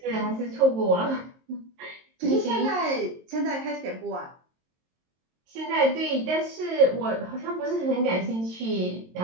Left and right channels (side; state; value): left; late; 22 ms